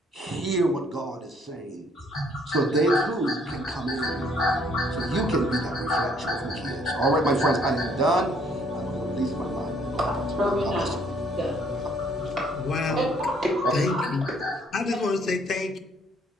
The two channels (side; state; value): both; normal; correlation 0.64